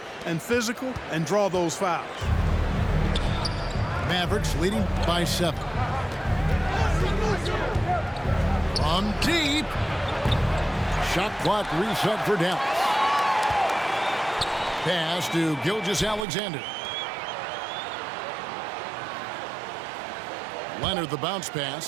and physical and draw those fouls. Mavericks leading by 7. From deep. Shot clock reset for Dallas. Pass to Gilgeous-Alexander. Leonard the bounce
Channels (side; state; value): left; drops out; at 16.2 s